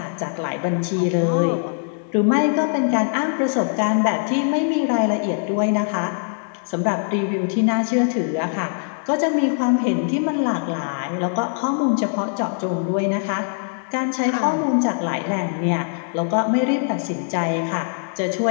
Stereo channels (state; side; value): silent; right; 64 dB below the other